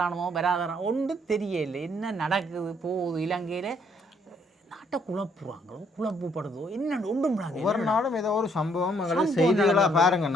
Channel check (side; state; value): both; normal; correlation 0.68